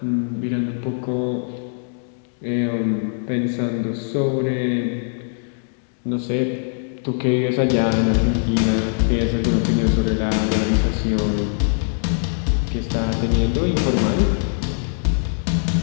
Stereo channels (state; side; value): silent; right; 65 dB below the other